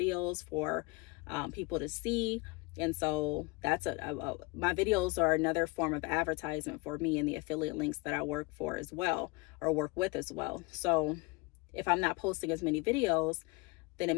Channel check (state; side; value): quieter; right; 25.3 dB